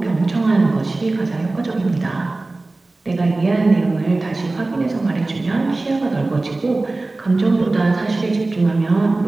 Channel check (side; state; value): left; quieter; 3.1 dB